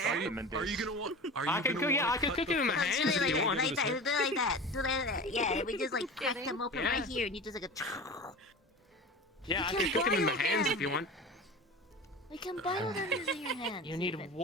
Are you gonna want? Are you I could gonna cook. Yeah, I want to could cut cook it with my No, hands do it if you like want. that, like that, do it like that, do it like that. Yeah, we just like crack them open right here, and you just like a. Yeah, I You could can cook them in my boil hands them. if you want. We can boil them using your hands. You need even.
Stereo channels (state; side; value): normal; both; correlation 0.33